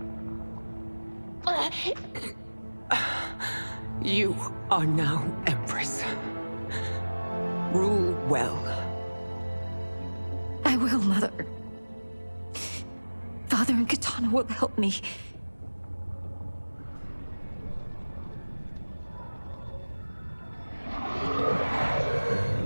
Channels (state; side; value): inverted; both; correlation -1.00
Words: You are now Empress. Rule well. I will, Mother. Father and Katana will help me.